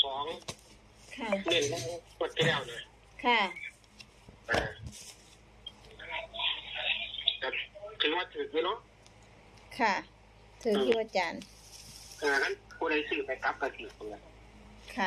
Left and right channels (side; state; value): both; identical; correlation 1.00